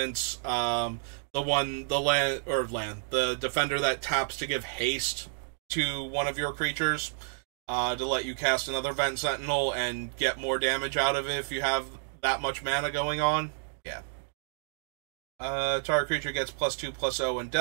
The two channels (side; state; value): left; silent; digital silence